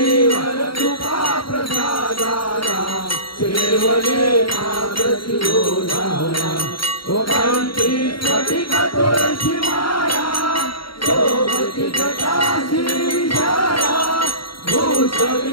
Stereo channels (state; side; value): late; right; 0.73 ms